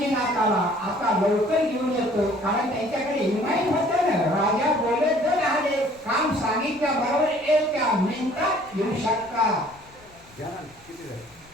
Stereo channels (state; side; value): noise; left; rumble, 27 dB below the sound